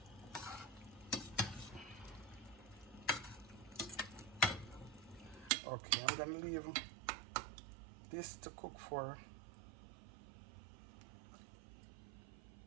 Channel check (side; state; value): left; drops out; at 5.5 s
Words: Okay, I'm gonna leave this to cook for